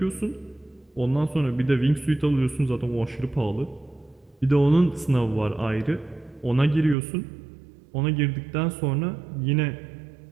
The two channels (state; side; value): drops out; left; at 7.0 s